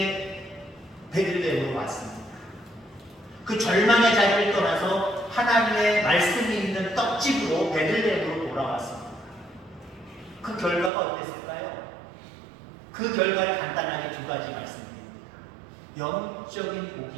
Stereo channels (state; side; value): drops out; left; at 10.9 s